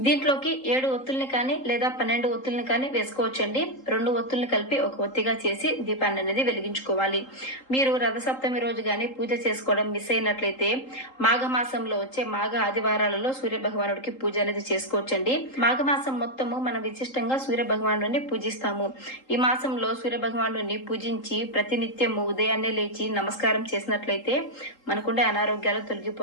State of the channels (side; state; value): right; late; 3.8 ms